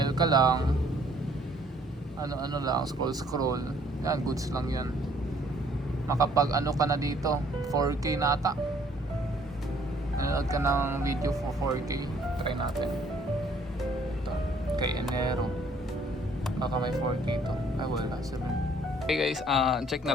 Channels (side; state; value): both; normal; correlation 0.61